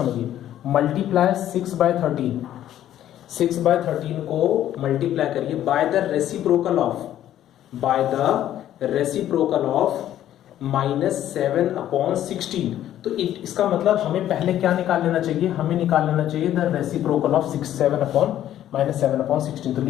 मल्टीप्लाई 6/13, 6/13 को मल्टीप्लाई करिए by the reciprocal of -7 upon 16। तो इसका मतलब हमें पहले क्या निकाल लेना चाहिए, हमें निकाल लेना चाहिए द रेसिप्रोकल ऑफ -7 अपॉन 16। तो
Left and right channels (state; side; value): quieter; right; 11.9 dB